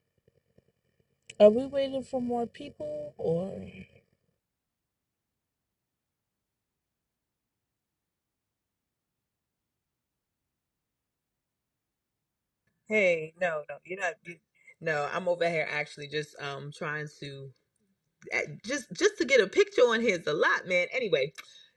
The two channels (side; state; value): both; identical; correlation 1.00